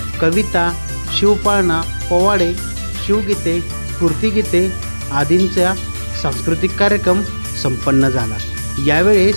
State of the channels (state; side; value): inverted; both; correlation -1.00